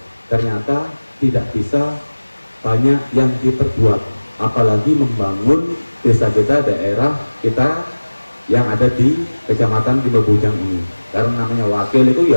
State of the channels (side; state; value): both; inverted; correlation -1.00